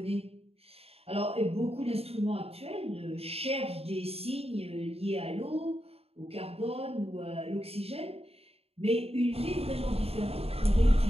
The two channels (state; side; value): late; left; 0.29 ms